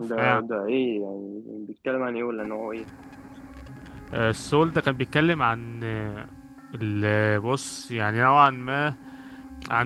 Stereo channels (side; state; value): both; identical; correlation 1.00